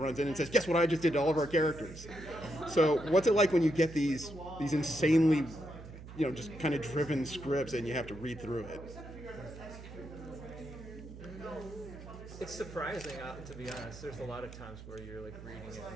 in and says, "Guess what I just did to all of our characters." So what's it like when you get these insanely, just kind of driven scripts and you have to read through it? It's surprising, to be honest. There's a lot of times where you're like reading it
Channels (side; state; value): right; noise; hum, 14 dB below the sound